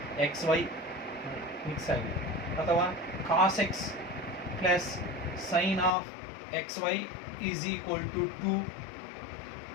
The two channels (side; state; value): right; drops out; at 5.9 s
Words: x y mix ಆಗಿದೆ. ಅಥವಾ cos x plus sine of x y is equal to 2.